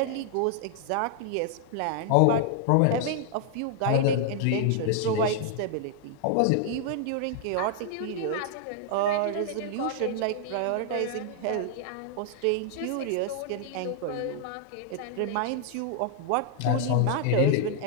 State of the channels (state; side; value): different; both; correlation 0.00